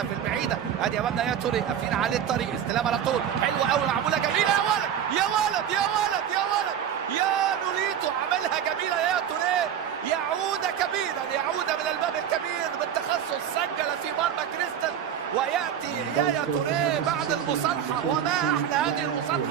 في البعيده. ادي امامنا يا توري قافلين عليه الطريق، استلام على طول حلوه قوي معموله جميله. يا ولد يا ولد يا ولد يا ولد يا نوليتو عملها جميله يا توري. يعود كبيرا، يعود من الباب الكبير بالتخصص، سجل في مرمى كريستال. وياتي يا توري بعد المصالحه، وما احلى هذه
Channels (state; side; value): quieter; left; 9.3 dB